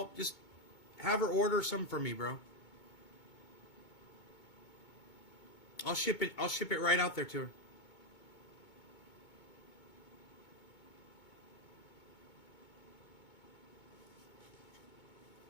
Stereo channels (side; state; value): right; late; 2.2 ms